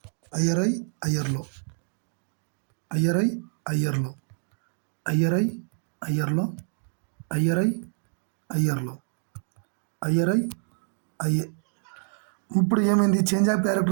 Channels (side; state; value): left; silent; digital silence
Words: ఐఆర్ఐ ఐఆర్లో, ఐఆర్ఐ ఐఆర్లో, ఐఆర్ఐ ఐఆర్లో, ఐఆర్ఐ ఐఆర్లో, ఐఆర్ఐ ఐఏ. ఇప్పుడు ఏమైంది, చేంజ్ ఆఫ్